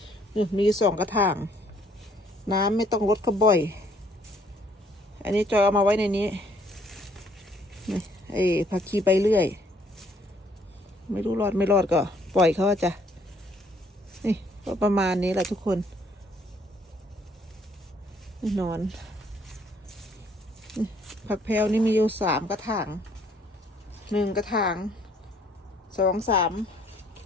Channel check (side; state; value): both; normal; correlation 0.64